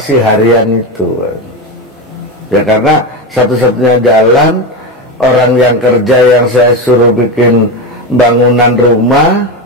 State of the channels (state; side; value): normal; both; correlation 0.17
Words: harian itu ya, karena satu-satunya jalan orang yang kerja yang saya suruh bikin bangunan rumah